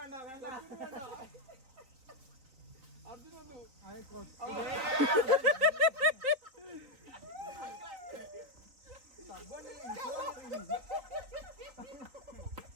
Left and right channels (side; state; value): left; late; 3.9 ms